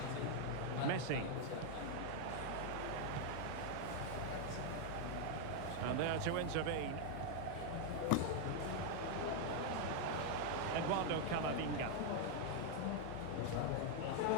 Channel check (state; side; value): different; both; correlation 0.00